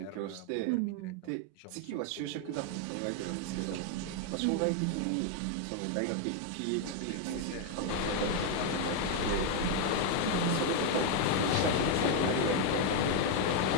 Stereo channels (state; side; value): different; both; correlation 0.01